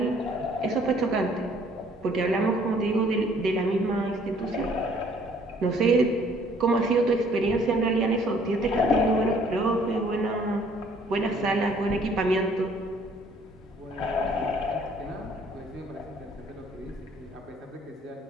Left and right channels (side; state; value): both; normal; correlation 0.60